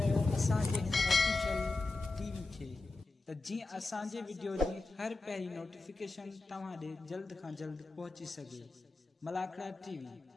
असांजे ऑफिशियल टीवी खे त जीअं असांजे वीडियो जी हर पहिरीं नोटिफिकेशन तव्हां ॾे जल्द खां जल्द पहुची सघे। मलाखड़ा टीवी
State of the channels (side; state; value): right; quieter; 3.3 dB